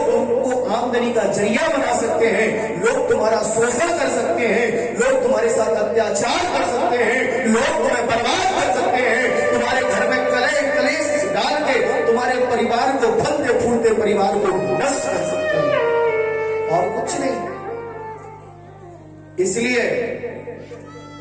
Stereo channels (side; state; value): both; identical; correlation 1.00